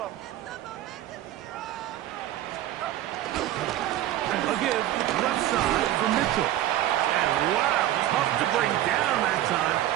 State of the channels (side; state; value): left; quieter; 13.4 dB